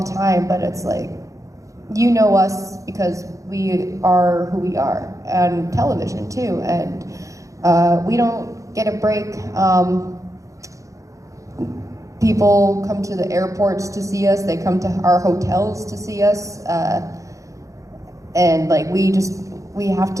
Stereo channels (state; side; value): late; left; 0.16 ms